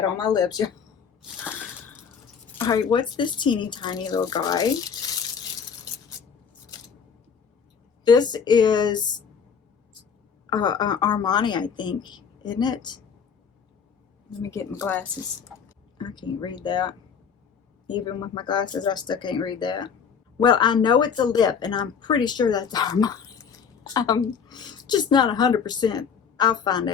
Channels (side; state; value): right; quieter; 6.7 dB